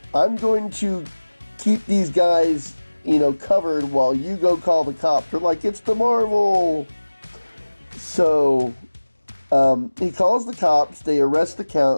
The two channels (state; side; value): inverted; both; correlation -1.00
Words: "I'm going to keep these guys, covered while you go call the cops." They're like, "It's the Marvel!" So he calls the cops. They arrest the